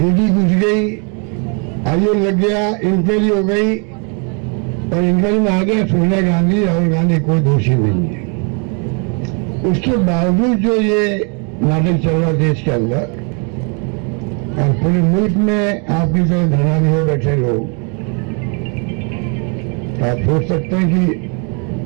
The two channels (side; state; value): left; quieter; 36.5 dB